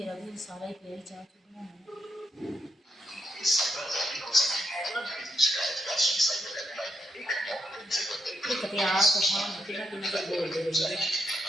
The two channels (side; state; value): both; normal; correlation 0.80